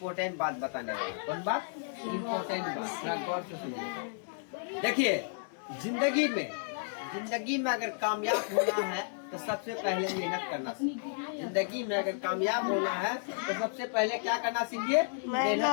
बात बताने वाला। कौन बात? इम्पोर्टेंट बात, थोड़ा गौर से सुनिए। देखिए, जिंदगी में अगर कामयाब होना है तो सबसे पहले मेहनत करना सीखिए। जिंदगी में अगर कामयाब होना है तो सबसे पहले क्या करना सीखिए?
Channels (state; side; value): silent; right; digital silence